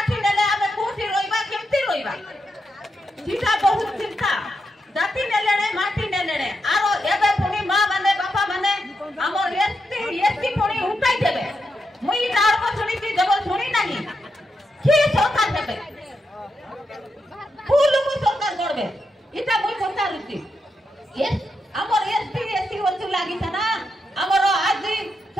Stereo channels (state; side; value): normal; both; correlation 0.84